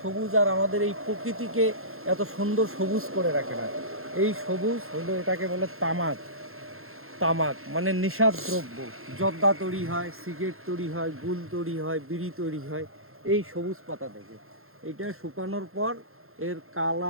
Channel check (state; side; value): late; left; 0.61 ms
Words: সবুজ আর আমাদের এই প্রকৃতিকে এত সুন্দর সবুজ করে রাখে না। এই সবুজ হলো, এটাকে বলে তামাক। তামাক মানে নেশার দ্রব্য। জর্দা তৈরি হয়, সিগারেট তৈরি হয়, গুল তৈরি হয়, বিড়ি তৈরি হয় এই সবুজ পাতা থেকে। এটা শুকানোর পর এর